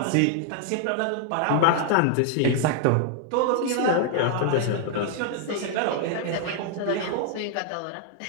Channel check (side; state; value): both; different; correlation 0.00